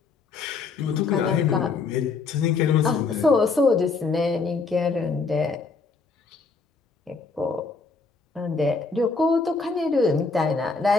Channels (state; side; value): quieter; right; 4.3 dB